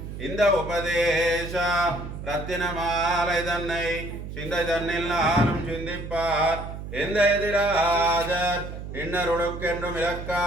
इंद उपदेश रत्नमालैदन्नै सिंदैदन्निल्लालुम सिंदिप्पार इंदैदिराजर इन्नरुडुक्केंडु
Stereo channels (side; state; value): right; noise; hum, 9 dB below the sound